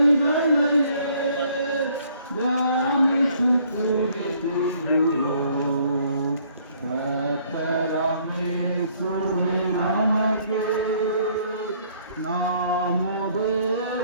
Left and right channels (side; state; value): both; inverted; correlation -0.62